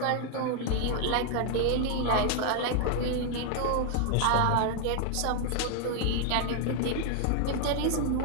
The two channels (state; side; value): different; both; correlation 0.00